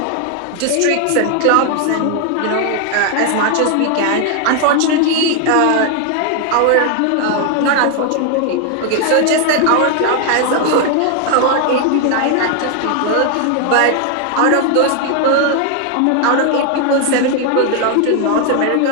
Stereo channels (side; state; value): both; different; correlation 0.01